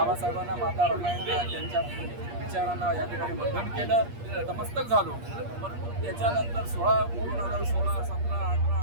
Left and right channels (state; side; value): late; left; 8.5 ms